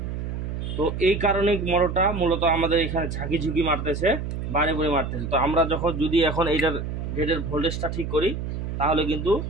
তো এই কারণে মোটরটা মূলত আমাদের এখানে ঝাঁকি ঝুঁকি মারতেছে, বারে বারে মারতেছে। তো আমরা যদি এখন এইটার গেটের ভোল্টেজটা ঠিক করি, তাহলে কিন্তু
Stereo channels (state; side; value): noise; right; hum, 5 dB below the sound